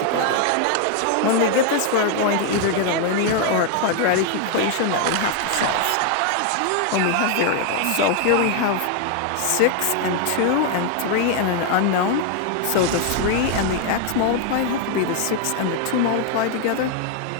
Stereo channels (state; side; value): different; both; correlation 0.00